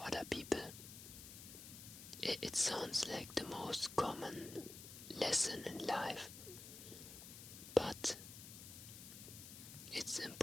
other people. It sounds like the most common lesson in life, but it's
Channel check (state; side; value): noise; left; hiss, 12 dB below the sound